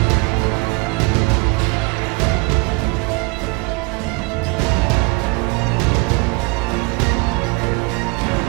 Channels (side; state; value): left; quieter; 27.4 dB